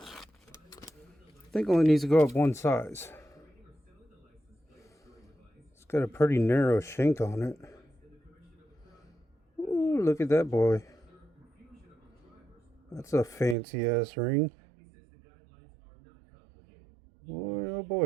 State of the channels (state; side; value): drops out; left; at 13.6 s